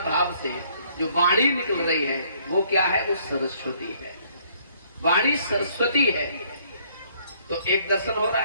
भाव से जो वाणी निकल रही है वो क्या है? वो सरस्वती है। वाणी सरस्वती है। तो एक दर्शन हो रहा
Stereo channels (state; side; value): inverted; both; correlation -0.64